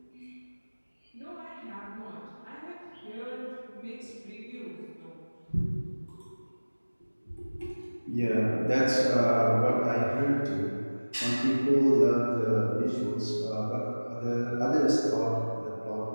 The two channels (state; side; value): inverted; both; correlation -1.00